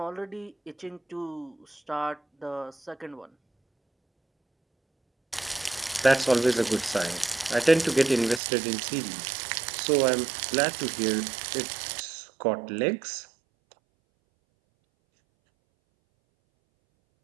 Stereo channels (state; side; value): drops out; left; at 8.4 s